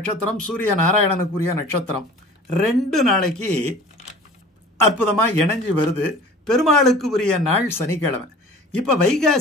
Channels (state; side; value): normal; both; correlation 0.43